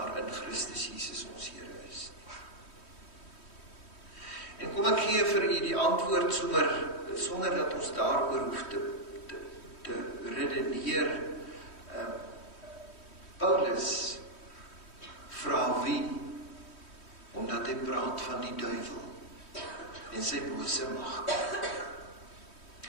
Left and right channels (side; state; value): right; late; 3.1 ms